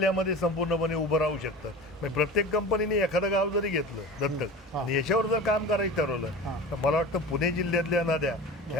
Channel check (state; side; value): normal; both; correlation 0.35